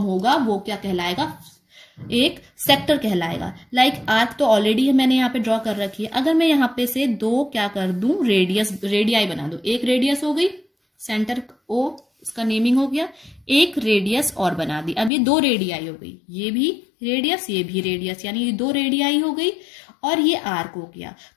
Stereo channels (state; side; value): drops out; right; at 15.1 s